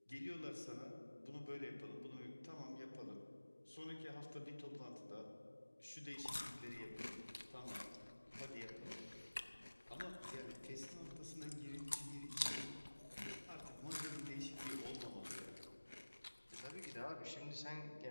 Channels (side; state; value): both; inverted; correlation -1.00